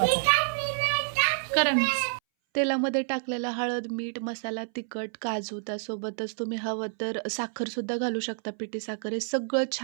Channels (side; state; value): left; silent; 59 dB below the other